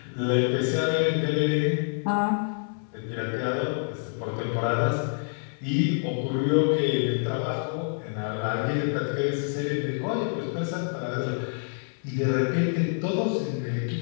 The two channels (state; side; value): silent; right; 60 dB below the other